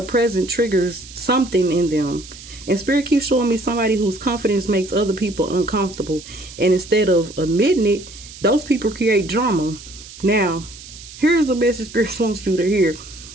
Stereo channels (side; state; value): right; noise; hiss, 16 dB below the sound